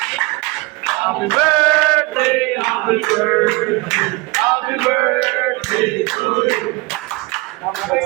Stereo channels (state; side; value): quieter; left; 24.8 dB